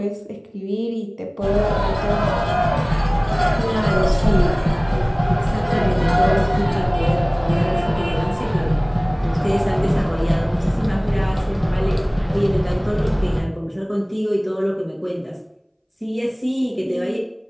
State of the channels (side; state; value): both; identical; correlation 1.00